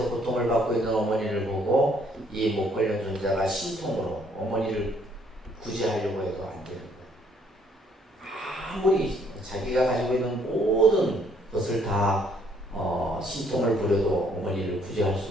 고통을 받고 있는 어머니를 보고 이 목걸련 존자가 신통으로 어머니를 구제하려고 해도 안 되는 거예요. 아무리 자기가 가지고 있는 모든 것을 다 신통을 부려도 어머니를 구제할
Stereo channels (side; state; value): both; normal; correlation 0.65